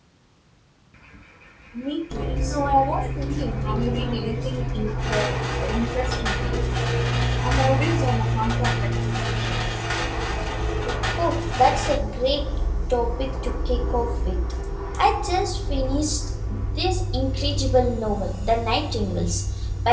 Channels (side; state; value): both; identical; correlation 1.00